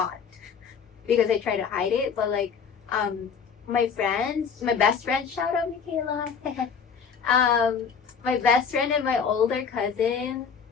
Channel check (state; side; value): quieter; right; 6.4 dB